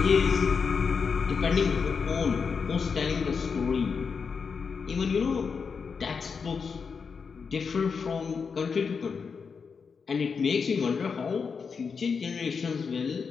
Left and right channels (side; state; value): right; quieter; 5.6 dB